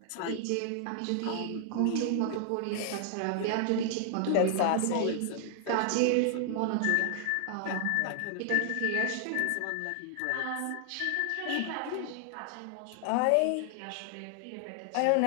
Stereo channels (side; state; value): both; different; correlation 0.00